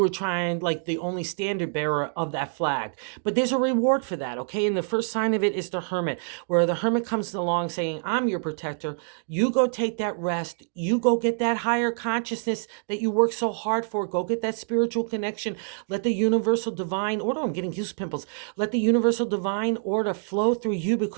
trying like the only standard bearer of that flag. But there's a reward for that, okay? And the first sign of it is the Hermit, where the Hermit comes along saying, I'm your protector. You go take that rest. You go get that higher consciousness that you work so hard for. Go get that spiritual connection. Let the universal divine order, I'm getting goose pimples. Let the universal divine order flow through you,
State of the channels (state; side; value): silent; left; 61 dB below the other